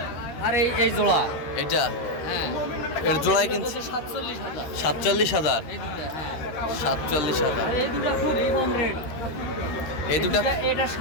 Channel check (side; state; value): right; late; 13 ms